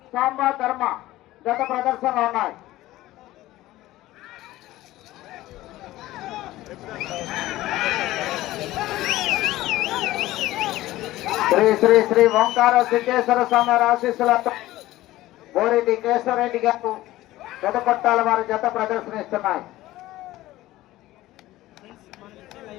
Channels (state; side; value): quieter; right; 16.4 dB